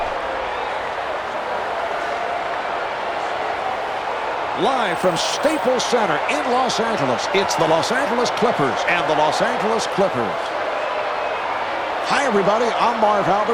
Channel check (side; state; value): both; identical; correlation 1.00